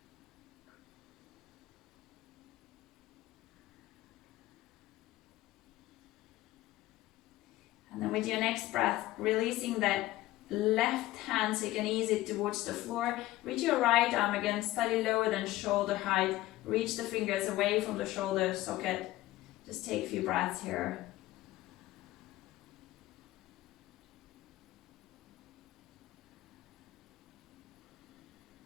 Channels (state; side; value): quieter; right; 16.7 dB